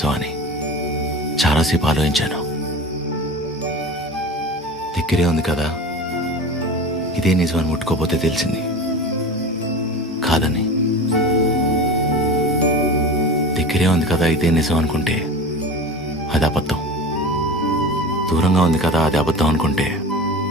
అని చాలాసేపు ఆలోచించాను. దగ్గరే ఉంది కదా, ఇదే నిజమని ముట్టుకోపోతే తెలిసింది కాదని. దగ్గరే ఉంది కదా ఇదే నిజం అనుకుంటే అది అబద్ధం, దూరంగా ఉంది కదా అది అబద్ధం అనుకుంటే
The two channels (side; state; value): both; normal; correlation 0.33